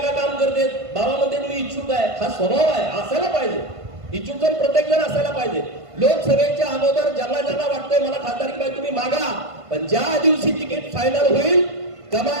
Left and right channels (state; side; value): late; left; 1.5 ms